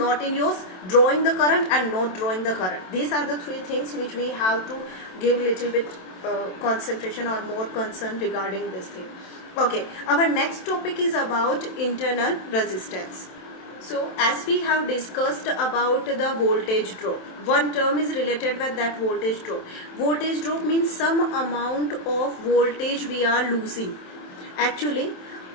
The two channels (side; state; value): right; late; 27 ms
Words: in use, drawing the current and not drawing the current. These are the three things which we have to give little bit concentration or more concern regarding this thing. Okay, our next topic is about internal resistance. So as we have discussed about the voltage drop, one term is related with that voltage drop. Voltage drop means some amount of voltage we are losing. Actually,